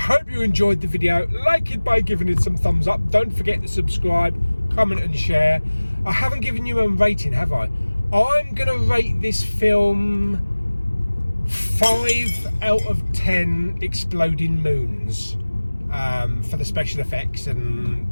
you enjoyed the video. Like it by giving it some thumbs up. Don't forget to subscribe, comment and share. I haven't given you a rating, have I? I'm going to rate this film 5 out of 10 exploding moons for the special effects and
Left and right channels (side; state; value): both; inverted; correlation -1.00